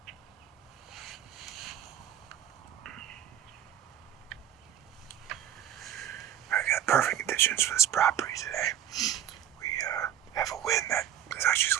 Perfect conditions for this property today. We have a wind that is actually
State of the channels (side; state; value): left; quieter; 10.7 dB